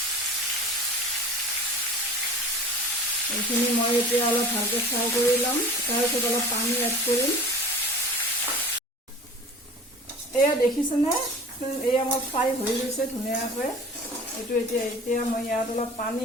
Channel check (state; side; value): normal; both; correlation 0.40